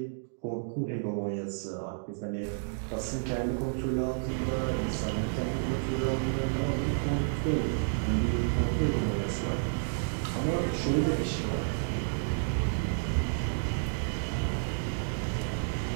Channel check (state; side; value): silent; left; digital silence